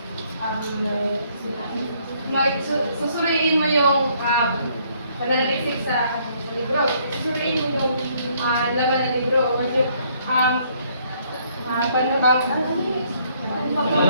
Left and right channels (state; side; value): inverted; both; correlation -0.66